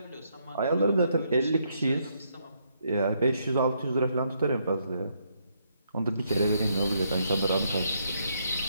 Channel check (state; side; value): inverted; both; correlation -0.75